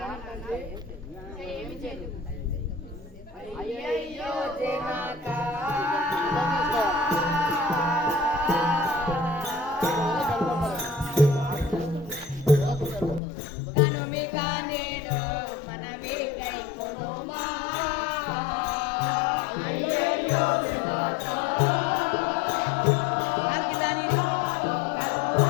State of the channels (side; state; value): right; drops out; at 13.2 s